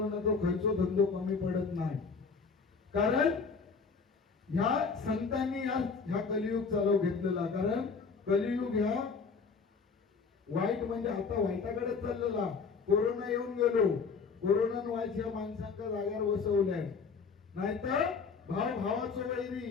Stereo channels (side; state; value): right; quieter; 5.1 dB